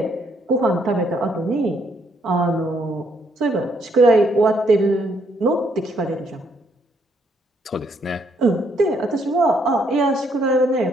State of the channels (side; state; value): both; normal; correlation 0.71